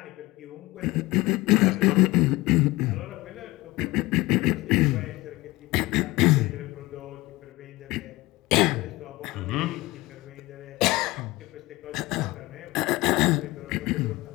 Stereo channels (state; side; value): quieter; right; 20.6 dB